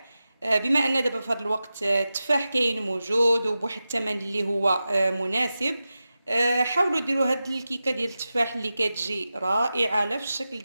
بما ان دابا في هذا الوقت التفاح كاين موجود وبواحد الثمن اللي هو مناسب. حاولوا ديروا هاد الكيكه ديال التفاح اللي كتجي رائعه لا في الشكل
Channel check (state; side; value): inverted; both; correlation -0.93